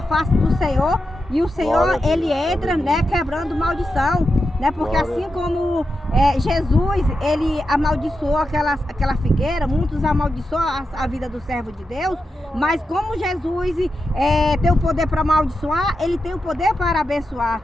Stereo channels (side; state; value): both; normal; correlation 0.88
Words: face do Senhor. E o Senhor, ele entra, né? Quebrando maldição, né? Porque assim como Jesus, ele amaldiçoou aquela figueira, muitos amaldiçoam a vida do servo de Deus, mas como Jesus tem o poder para amaldiçoar, ele tem o poder para abençoar.